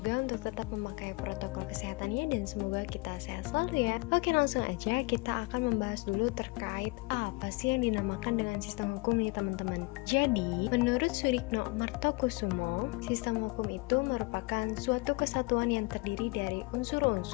untuk tetap memakai protokol kesehatannya dan semoga kita sehat selalu ya. Oke, langsung aja kita akan membahas dulu terkait apa sih yang dinamakan dengan sistem hukum nih teman-teman. Jadi, menurut Surikno Martokusumo, sistem hukum itu merupakan suatu kesatuan yang terdiri dari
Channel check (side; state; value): right; quieter; 25.9 dB